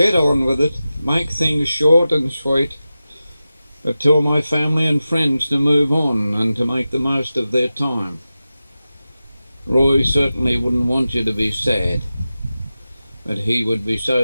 on with it, make things short and sweet, but tell my family and friends to move on and to make the most of their time." Roy certainly wouldn't want you to be sad, but he would be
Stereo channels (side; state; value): both; inverted; correlation -0.94